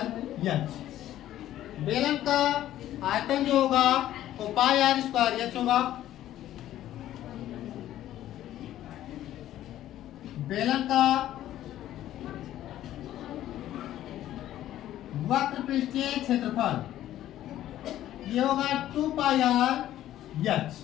बेलन का आयतन जो होगा वो πr²h होगा। बेलन का वक्र पृष्ठीय क्षेत्रफल ये होगा 2πr(h),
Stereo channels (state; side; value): quieter; right; 13.0 dB